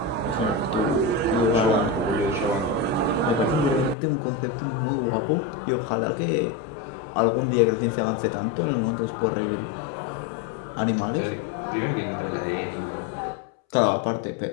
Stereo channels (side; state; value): right; drops out; at 4.0 s